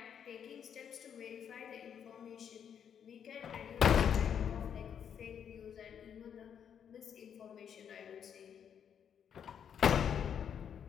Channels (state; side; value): quieter; right; 8.2 dB